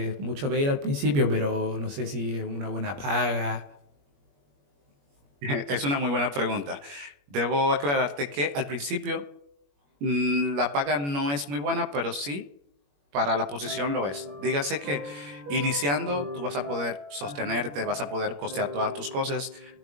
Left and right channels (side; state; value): left; late; 21 ms